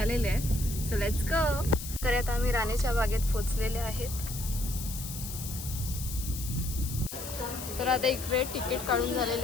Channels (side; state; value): left; noise; hiss, 9 dB below the sound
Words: आहेत. So let's go. तर आता आम्ही राणीच्या बागेत पोहोचलेले आहेत. तर आता इकडे तिकीट काढून झालेले